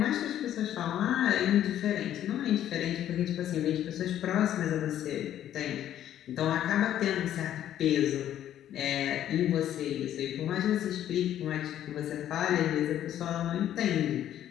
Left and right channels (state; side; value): quieter; right; 11.3 dB